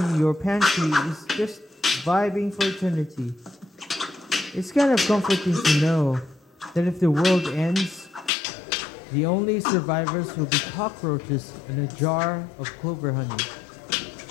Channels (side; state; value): right; drops out; at 8.3 s